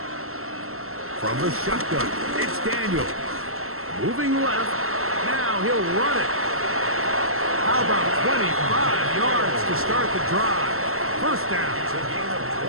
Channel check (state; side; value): late; left; 0.62 ms